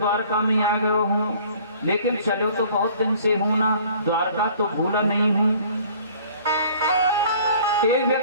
में आ गया हूँ, लेकिन चलो तो बहुत दिन से हूँ ना, द्वारका तो भूला नहीं हूँ। एक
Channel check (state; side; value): inverted; both; correlation -0.52